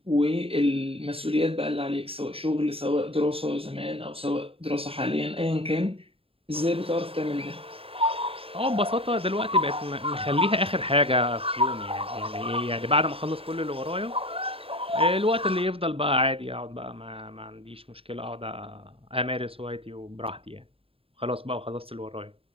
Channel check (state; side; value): late; left; 0.27 ms